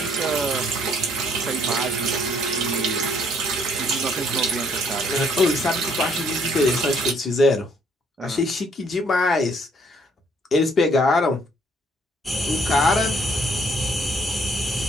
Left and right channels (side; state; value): both; normal; correlation 0.65